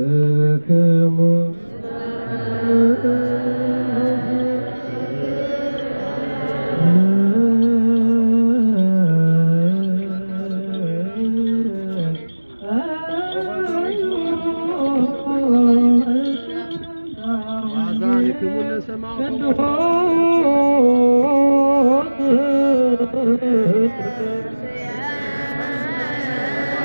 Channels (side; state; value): both; inverted; correlation -1.00